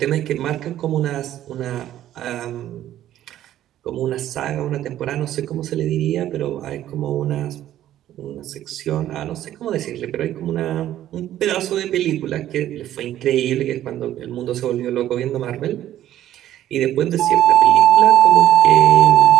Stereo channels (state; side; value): quieter; left; 12.5 dB